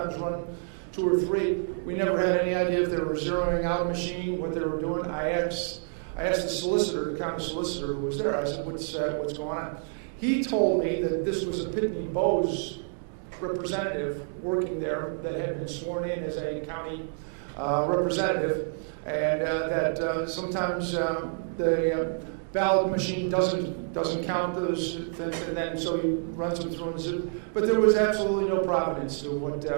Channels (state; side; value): silent; left; digital silence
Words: run 2 or 3. We never had any idea if they were zeroing out a machine, what they were doing. I asked the solicitor, the county solicitor who was there, I said, what's going on? He told me that this was a Pitney Bowes representative working there that had been sworn in as a county representative, and that sometimes the ballot machine doesn't count those things, and then so he runs them through. But there was absolutely no provenance to